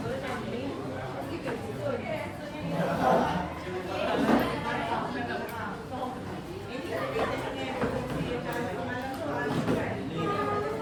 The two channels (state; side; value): identical; both; correlation 1.00